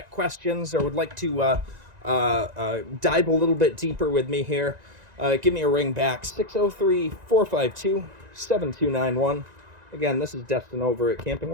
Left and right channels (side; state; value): left; late; 1.9 ms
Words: questions or would like to dive a little bit deeper with me here, give me a ring back, 603-452-7291. Again, this is Destin over at Camping